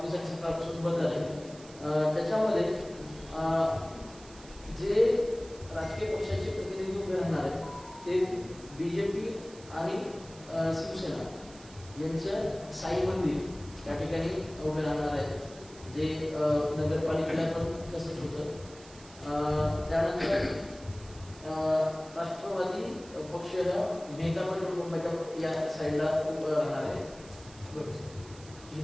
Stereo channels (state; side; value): noise; right; hiss, 20 dB below the sound